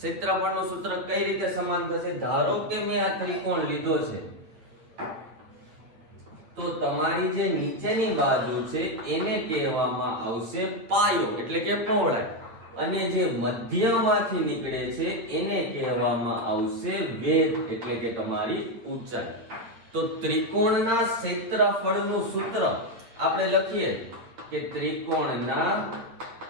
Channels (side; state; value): left; late; 9.0 ms